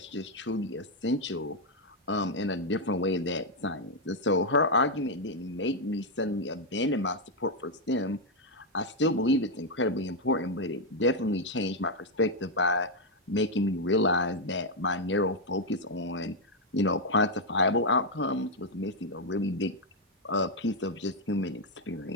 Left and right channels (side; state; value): both; normal; correlation 0.01